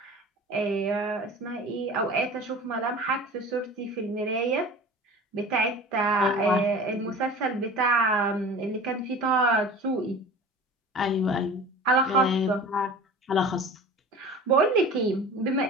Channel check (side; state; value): both; normal; correlation 0.39